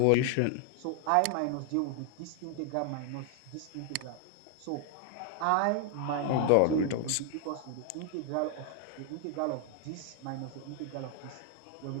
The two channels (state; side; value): different; both; correlation 0.00